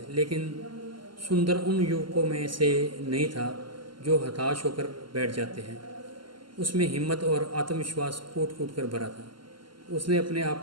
लेकिन सुंदर उन युवकों में से नहीं था जो हताश होकर बैठ जाते हैं। उसमें हिम्मत और आत्मविश्वास कूट कूट कर भरा था। उसने अपने आप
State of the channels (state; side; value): late; left; 0.72 ms